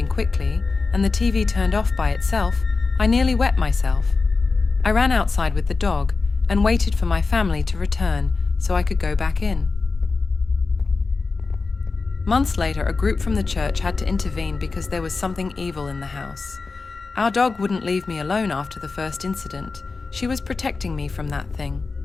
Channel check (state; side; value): quieter; right; 4.1 dB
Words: quickly and the TV turned off by itself, I nearly wet myself. I ran outside with the dog and waited for my family to return so I could go back in. Months later, a group from the church had to intervene because there was something evil in the house. Our dog wouldn't leave me alone after the first incident. She was protecting me from that thing.